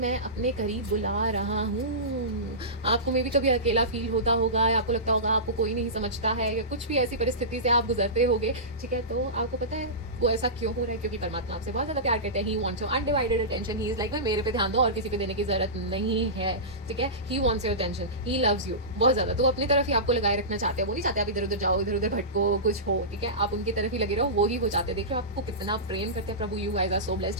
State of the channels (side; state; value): both; normal; correlation -0.20